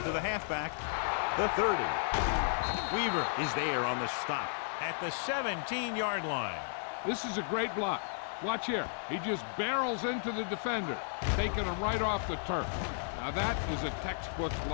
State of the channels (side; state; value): right; silent; 55 dB below the other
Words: to the halfback, the 30. Weaver is there on the stop at the 17-yard line. This is a great block. Watch here. He just barrels into the defender, taking him right off the turf. Now that is a textbook